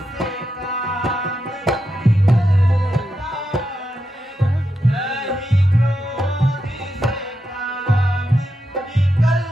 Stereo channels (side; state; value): both; normal; correlation 0.85